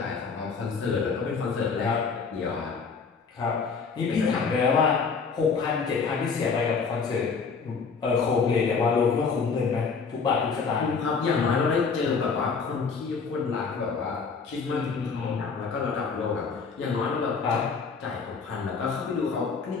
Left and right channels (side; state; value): right; quieter; 5.2 dB